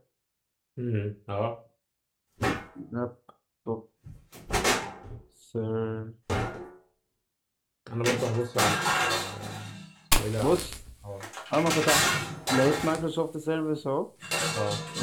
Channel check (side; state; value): both; identical; correlation 1.00